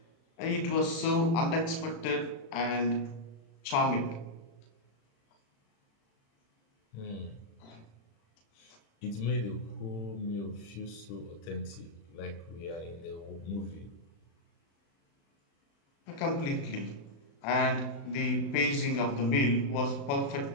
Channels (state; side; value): late; right; 36 ms